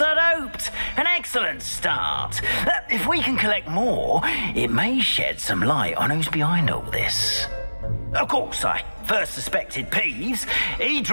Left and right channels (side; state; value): both; inverted; correlation -1.00